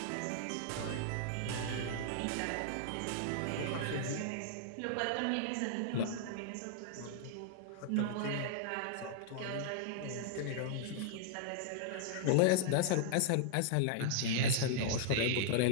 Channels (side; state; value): both; different; correlation -0.01